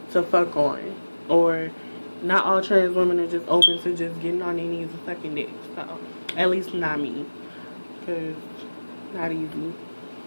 to fuck on. Or not all trans women are just open to just getting on their knees and sucking dick. So, at least not me. Because, not easy.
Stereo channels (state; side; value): inverted; both; correlation -1.00